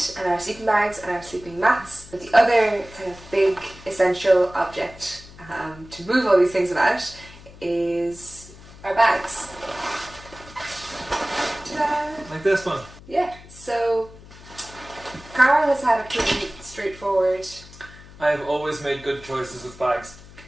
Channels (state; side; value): noise; left; hum, 20 dB below the sound